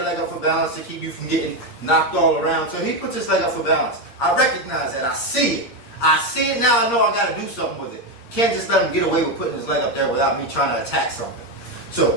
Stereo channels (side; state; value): right; late; 8.5 ms